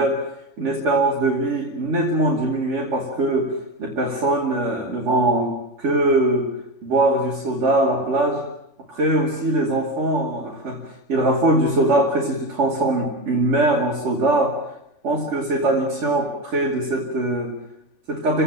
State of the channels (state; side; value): late; left; 3.5 ms